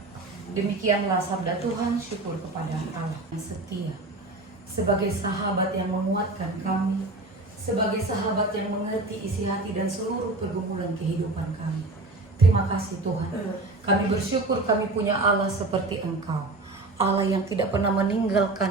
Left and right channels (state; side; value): quieter; left; 3.1 dB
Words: Demikianlah sabda Tuhan. Syukur kepada Allah yang setia. Sebagai sahabat yang menguatkan kami, sebagai sahabat yang mengerti isi hati dan seluruh pergumulan kehidupan kami. Terima kasih Tuhan. Kami bersyukur kami punya Allah seperti Engkau. Allah yang tidak pernah